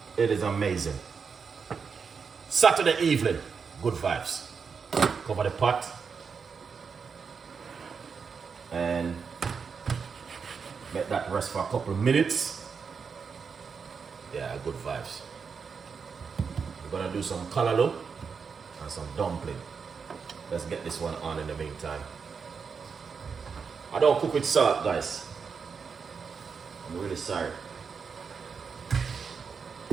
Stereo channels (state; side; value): quieter; left; 5.8 dB